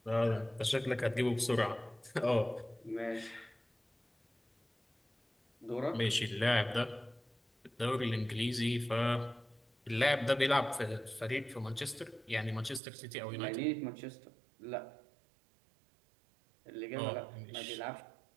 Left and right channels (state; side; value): drops out; left; at 12.8 s